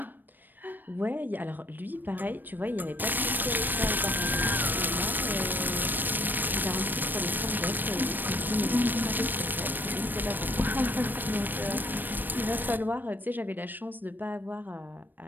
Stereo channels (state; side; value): late; left; 0.091 ms